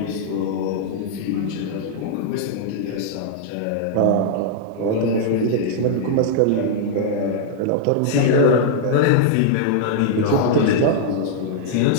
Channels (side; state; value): both; different; correlation -0.01